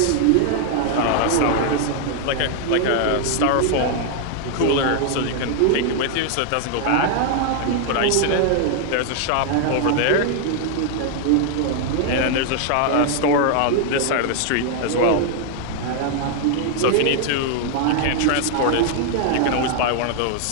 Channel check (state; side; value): different; both; correlation 0.00